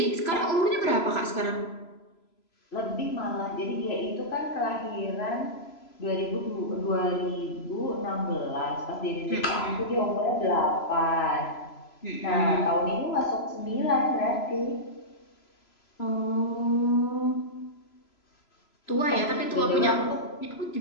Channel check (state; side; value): late; right; 3.0 ms